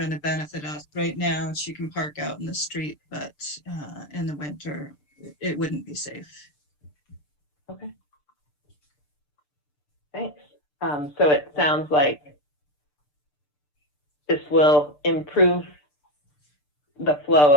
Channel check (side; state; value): right; late; 6.8 ms